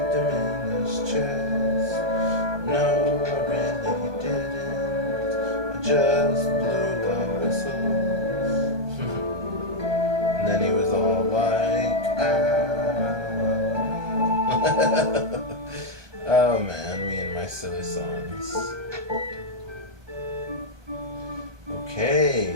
him in his chest. No, I really didn't. I just blew a whistle. And then he was all like, oh man, me and my silly songs.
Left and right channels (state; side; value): late; left; 1.2 ms